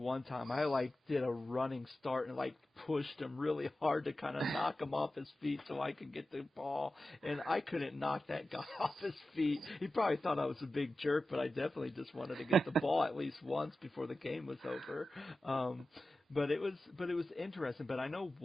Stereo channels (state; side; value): normal; both; correlation 0.94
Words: time I, like, did a running start and, like, pushed him really hard to kind of knock him off his feet so I could get the ball. And I couldn't knock that guy off his feet. He probably thought I was a big jerk, but I definitely just wanted to get the ball at least once before the game was over. But it was interesting. But I know